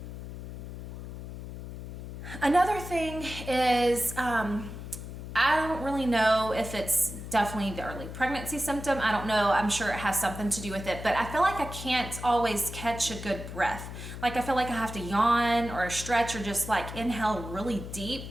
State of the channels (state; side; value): noise; left; hum, 9 dB below the sound